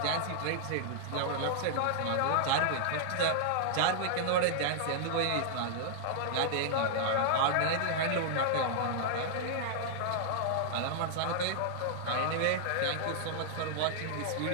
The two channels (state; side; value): different; both; correlation -0.01